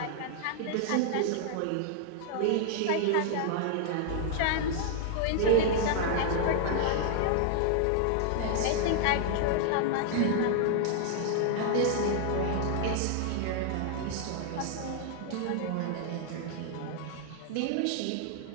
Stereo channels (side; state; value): both; different; correlation 0.00